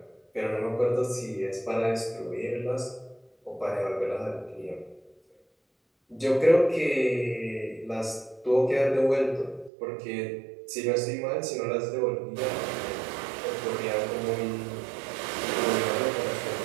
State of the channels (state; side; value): drops out; left; at 9.7 s